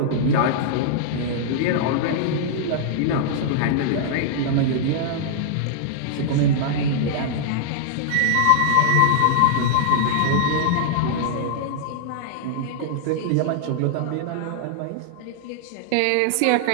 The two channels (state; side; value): different; both; correlation -0.01